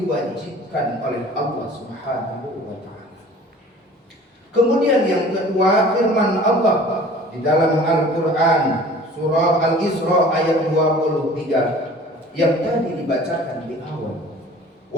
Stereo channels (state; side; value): normal; both; correlation 0.46